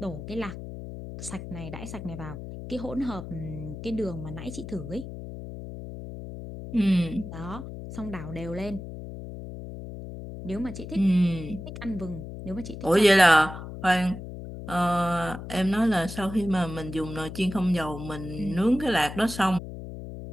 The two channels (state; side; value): noise; left; hum, 10 dB below the sound